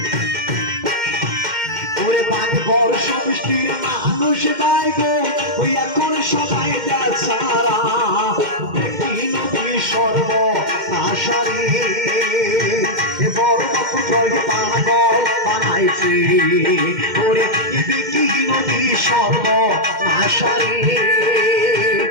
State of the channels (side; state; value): left; late; 2.1 ms